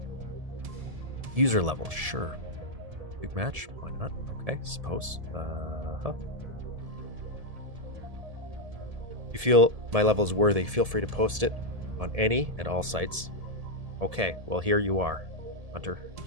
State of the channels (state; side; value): late; left; 1.7 ms